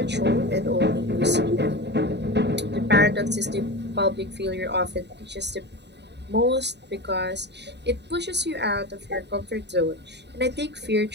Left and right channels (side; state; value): left; late; 0.50 ms